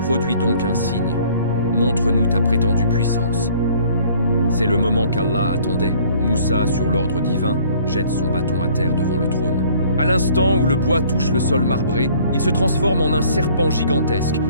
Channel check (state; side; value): inverted; both; correlation -0.56